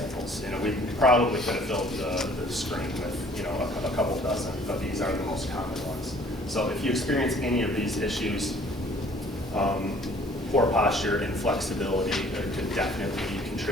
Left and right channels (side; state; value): both; normal; correlation 0.55